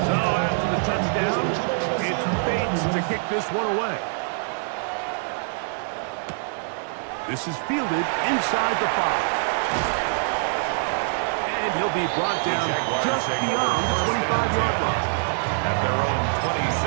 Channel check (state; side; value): silent; left; 62 dB below the other